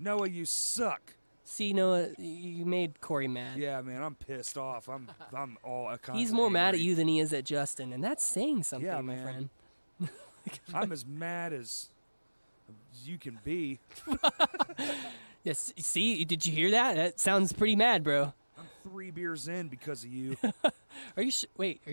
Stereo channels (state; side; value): inverted; both; correlation -1.00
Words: you suck. See, Noah, you made Corey mad. Yeah, man, I'm pissed off. I'm all He's more mad at you than he is at Justin, and that's saying something, Yeah, my man. friend. I'm as mad as you can be. Yes. See, did you hear that? That sounds pretty mad, bro. I'm 3 beers in because of you. Are you wait? Are